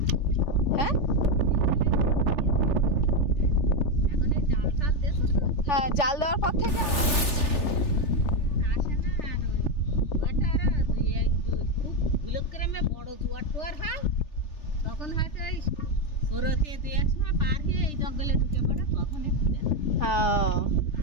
হ্যাঁ হ্যাঁ, জাল দেওয়ার পর থেকে বড় জোয়ার টোয়ার হয় তখন হয়তো ওই সরতে দুই এক সময় পার হয়ে এই জঙ্গলে ঢুকে পড়ে তখন একটু দেখা।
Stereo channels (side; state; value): right; late; 3.4 ms